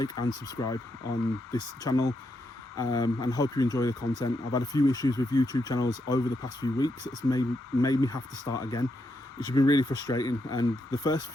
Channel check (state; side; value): normal; both; correlation 0.81